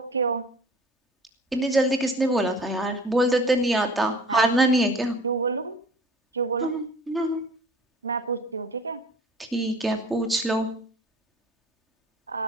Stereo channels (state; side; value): normal; both; correlation 0.47